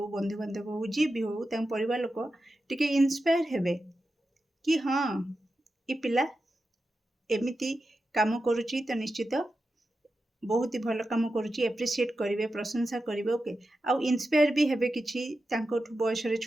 बंधु बांधव हो जी भी हो तांको परिवार लोक टिके इंस्पायर हेबे कि हां ई पिला एमिति काम करुची तो निश्चित बहुत ही भल काम करुची एप्रिशिएट करिवे प्रशंसा करिवे ओके आ इंस्पायर भी हेबे किछि तांको बयस रे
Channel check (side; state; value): both; normal; correlation 0.91